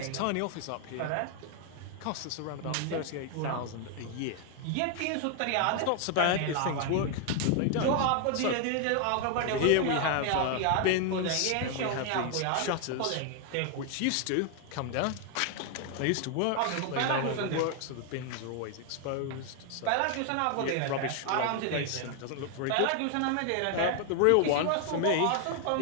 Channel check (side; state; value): both; different; correlation 0.00